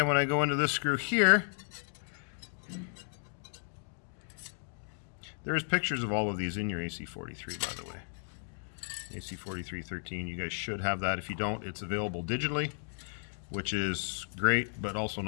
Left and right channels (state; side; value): silent; right; 55 dB below the other